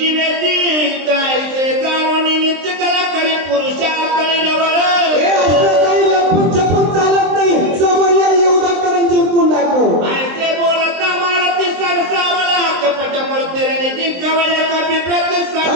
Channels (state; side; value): late; left; 23 ms